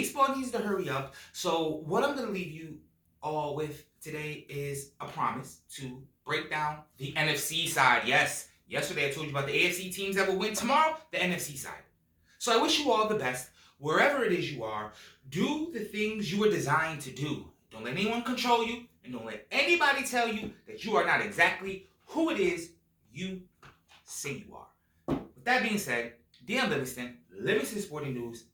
needs to hurry up. So what I'm going to leave you all with today is a promise to break down the NFC side. Yes, yesterday I told you about the AFC teams that will win tomorrow, the NFC side. So I wish you all the best. Wherever it is you are, do the things you were designed to do. Don't let anyone control you, and don't let anybody tell you that you are not exactly who it is you say you are. With that being said, DM Livingston Sporting News.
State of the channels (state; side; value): identical; both; correlation 1.00